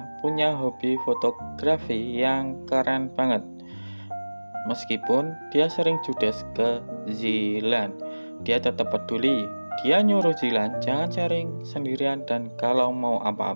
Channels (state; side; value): inverted; both; correlation -1.00